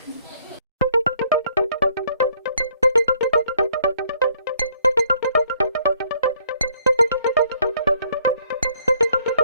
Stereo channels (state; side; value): inverted; both; correlation -0.65